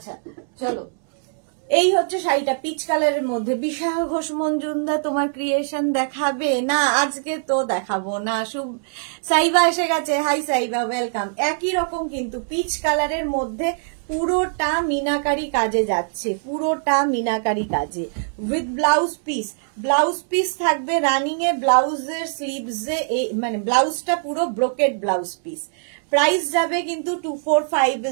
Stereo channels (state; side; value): silent; left; 62 dB below the other